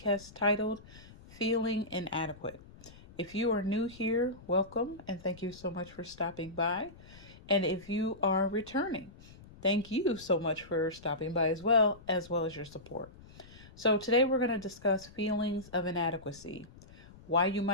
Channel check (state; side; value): noise; left; rumble, 20 dB below the sound